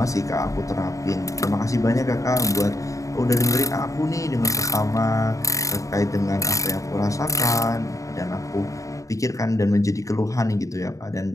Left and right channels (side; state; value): right; late; 0.16 ms